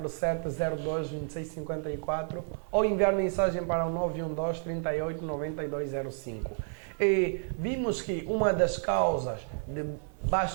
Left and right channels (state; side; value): silent; left; 57 dB below the other